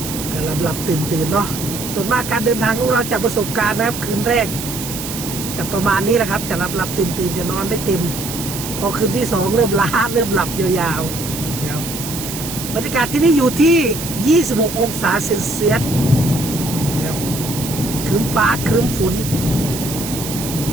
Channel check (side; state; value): right; noise; hiss, 7 dB below the sound